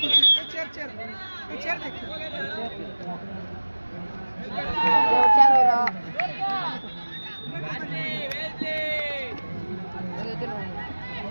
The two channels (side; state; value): both; inverted; correlation -1.00